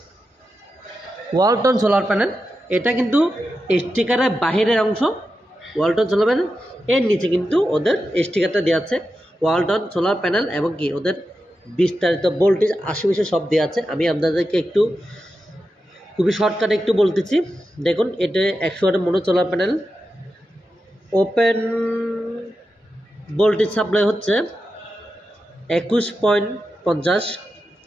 ওয়ালটন সোলার প্যানেল, এটা কিন্তু স্টিকারের বাহিরের অংশ ওয়ালটন সোলার প্যানেল। এর নিচে কিন্তু ওদের স্টিকারটা দেওয়া আছে ওয়ালটন সোলার প্যানেল এবং কি ওদের বিস্তারিত ভোল্টেজ আশেপাশে সব দেওয়া আছে। আমি আপনাদেরকে একটু খুবই শর্টকাটে একটু বলতেছি। দেখুন, এটা 100 ওয়াটের mono solar panel. Open voltage supply হচ্ছে 21.50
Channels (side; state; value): both; normal; correlation 0.90